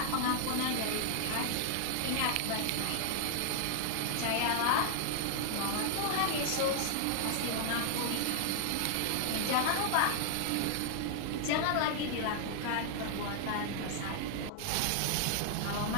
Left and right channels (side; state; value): both; different; correlation 0.00